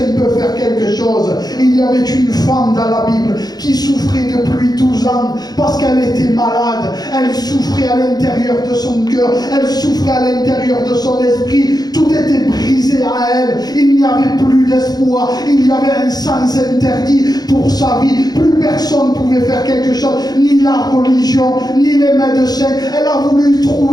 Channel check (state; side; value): late; right; 0.19 ms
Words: ne peut faire quelque chose. Il y avait une femme dans la Bible qui souffrait depuis 12 ans parce qu'elle était malade. Elle souffrait à l'intérieur de son cœur, elle souffrait à l'intérieur de son esprit. Tout était brisé à elle. Il n'y avait plus d'espoir. Il y avait un sens interdit pour sa vie. Plus personne ne pouvait faire quelque chose, ni la religion, ni les médecins. Elle a voulu